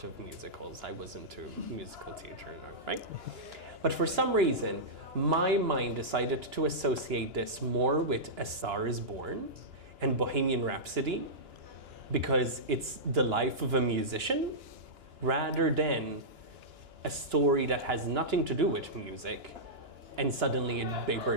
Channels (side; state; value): left; late; 2.9 ms